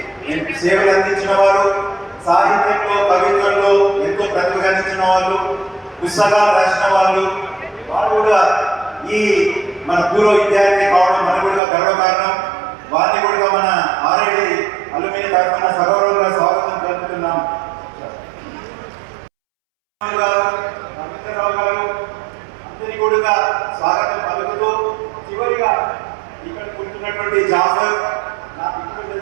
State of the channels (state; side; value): drops out; left; at 11.6 s